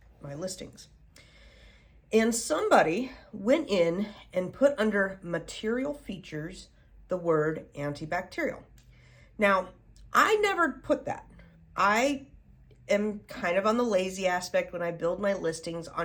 listings. And somebody went in and put under material features the word antibacterial. Now, I never put that. I am kind of on the lazy aspect when I build my listings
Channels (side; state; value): both; identical; correlation 1.00